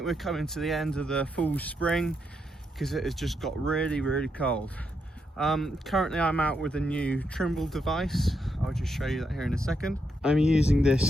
we're coming to the end of the full spring because it has just got really cold. Currently I'm out with a new Trimble device. I'll just show you that here in a second. I'm using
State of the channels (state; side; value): normal; both; correlation 0.81